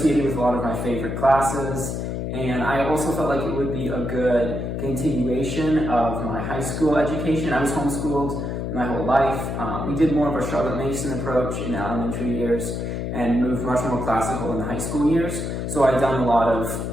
with a lot of my favorite classes, and I also felt like it would be a good continuation of my high school education. I was homeschooled my whole life. We did more of a Charlotte Mason approach in the elementary years and moved much more classical in the high school years. So I'd done a lot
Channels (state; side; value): noise; left; hum, 3 dB below the sound